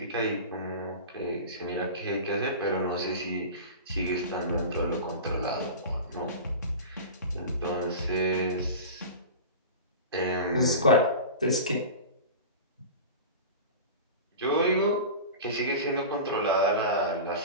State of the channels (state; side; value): inverted; both; correlation -0.31